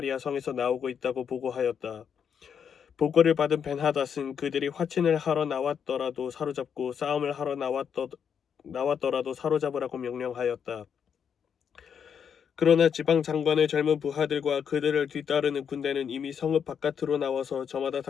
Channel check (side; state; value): right; quieter; 7.5 dB